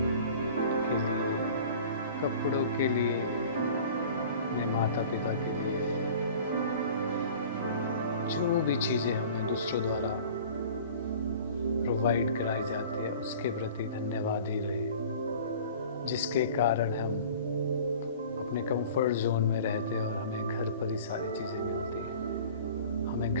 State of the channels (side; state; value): both; inverted; correlation -0.44